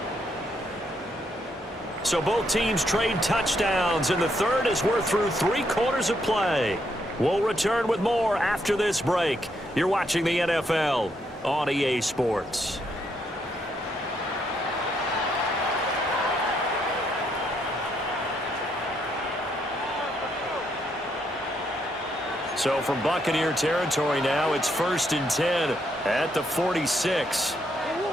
So both teams trade touchdowns in the 3rd as we're through 3 quarters of play. We'll return with more after this break. You're watching the NFL on EA Sports. So from Buccaneer territory now, it's 1st and 10 at the 46.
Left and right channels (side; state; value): both; normal; correlation 0.75